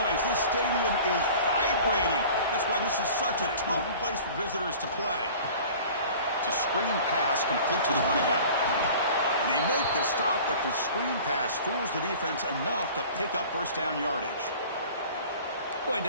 This stadium is vibrating. That's why this is such a tough place for visitors to play. It's a screen pass complete to the running back. And they make the stop, but the screen pass fools the defense enough to pick up 1st down yardage. Boy,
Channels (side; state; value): both; inverted; correlation -0.44